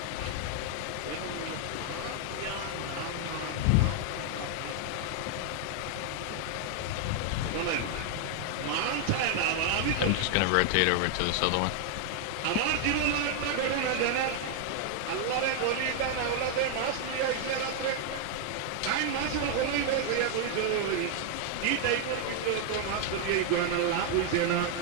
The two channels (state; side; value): different; both; correlation 0.00